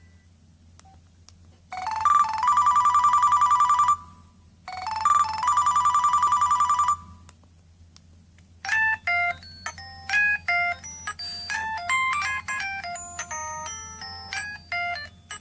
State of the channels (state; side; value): identical; both; correlation 1.00